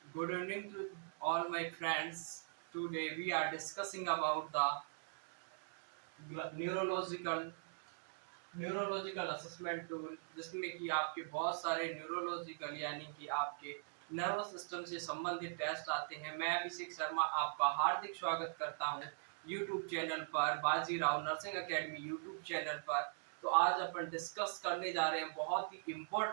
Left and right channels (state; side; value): silent; left; digital silence